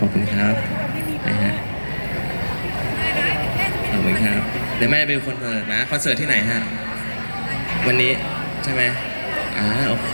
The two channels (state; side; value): inverted; both; correlation -1.00